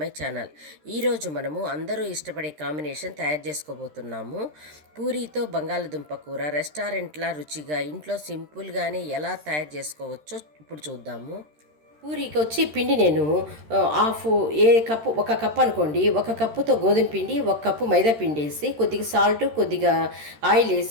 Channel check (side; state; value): left; late; 13 ms